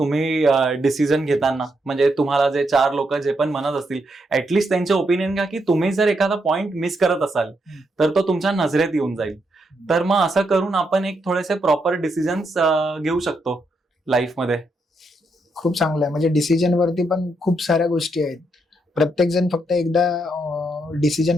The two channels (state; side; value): normal; both; correlation 0.79